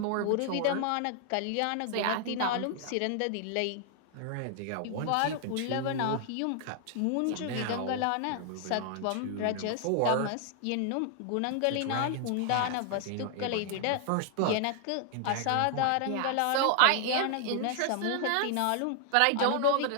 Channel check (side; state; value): both; different; correlation 0.00